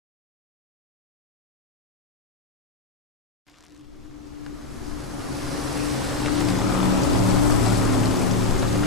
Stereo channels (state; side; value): quieter; right; 3.6 dB